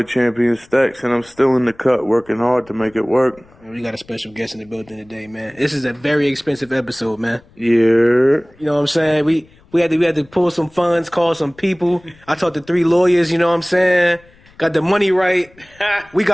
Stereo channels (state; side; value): noise; left; rumble, 28 dB below the sound